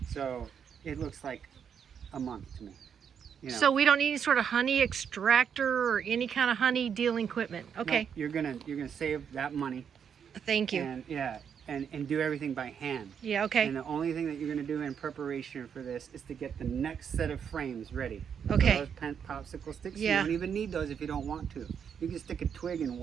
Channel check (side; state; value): left; quieter; 7.6 dB